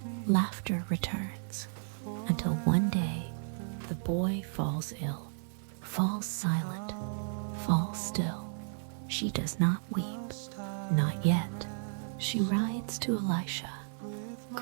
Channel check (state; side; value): silent; left; 55 dB below the other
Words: Laughter returns, until one day the boy falls ill, falls silent, falls still. She does not weep, not yet. She rides to Elisha,